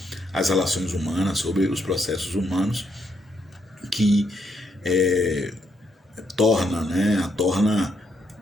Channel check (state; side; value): normal; both; correlation 0.76